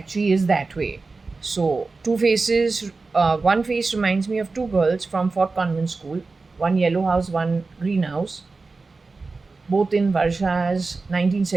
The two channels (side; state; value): left; quieter; 3.9 dB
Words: is that way. So two faces, one face reminds me of two girls from Fort Convent School, one yellow house, one green house, both in Varsha's